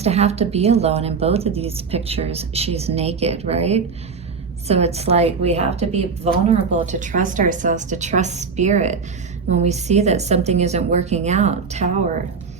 to have to be alone. In both of these pictures, she's naked, right? So it's like we have to be vulnerable to trust ourselves, to trust spirit. When we see that something isn't working out, Tower.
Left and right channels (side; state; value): left; quieter; 5.3 dB